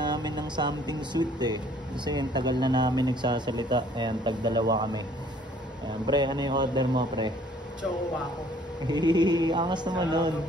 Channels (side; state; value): both; normal; correlation 0.58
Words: ng something sweet kasi yung tagal na namin nagsasalita. Ayan, tagdalawa kami. Ayan, pre, ano yung order mo, pre? Choco Waco. Angas naman nun.